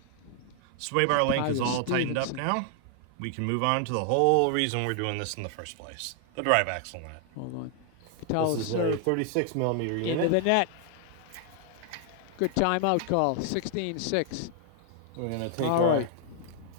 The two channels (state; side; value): different; both; correlation 0.00